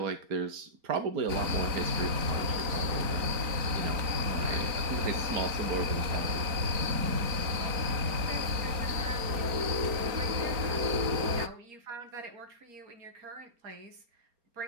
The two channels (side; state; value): left; late; 4.3 ms